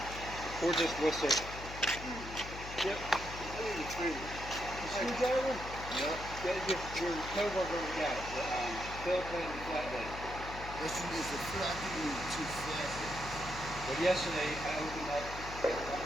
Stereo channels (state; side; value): noise; left; hum, 10 dB below the sound